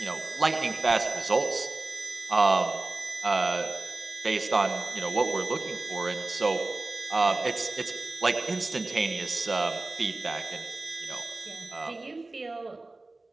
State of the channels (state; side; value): quieter; left; 3.2 dB